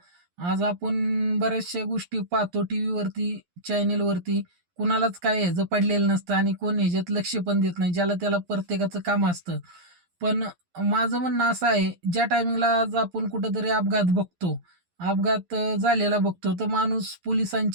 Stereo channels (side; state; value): left; late; 11 ms